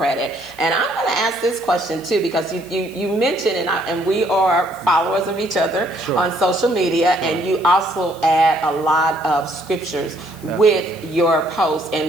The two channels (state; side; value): noise; left; hiss, 22 dB below the sound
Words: And I'm going to ask this question too, because you mentioned, and we are followers of each other on social media, and you also add a lot of scriptures with your posts